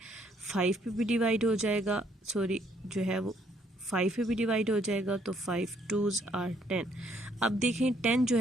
5 पे भी डिवाइड हो जाएगा, सॉरी जो है वो 5 पे भी डिवाइड हो जाएगा, तो 5 2s आर 10। अब देखें 10 जो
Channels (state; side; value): normal; both; correlation 0.68